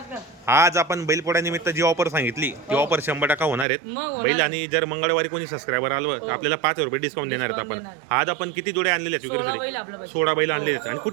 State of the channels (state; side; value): drops out; left; at 3.7 s